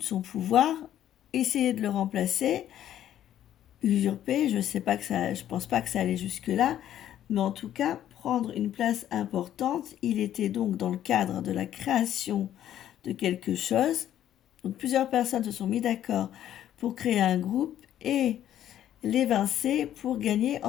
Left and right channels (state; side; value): quieter; right; 11.4 dB